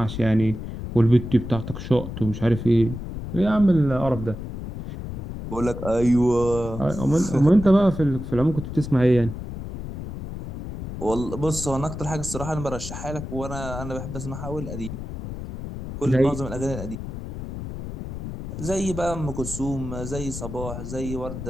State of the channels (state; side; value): noise; left; rumble, 8 dB below the sound